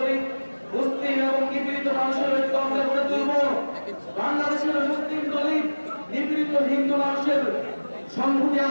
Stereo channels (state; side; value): inverted; both; correlation -1.00